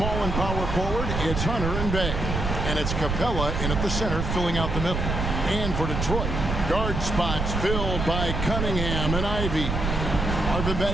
and power forward, it's Hunter and Bay. And it's Capella in at the center, filling out the middle. And for Detroit, guard spots filled by Cunningham and Ivy. Marvin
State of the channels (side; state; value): right; noise; rumble, 2 dB below the sound